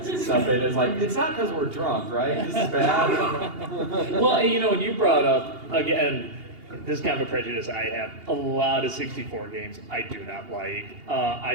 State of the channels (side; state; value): left; late; 2.8 ms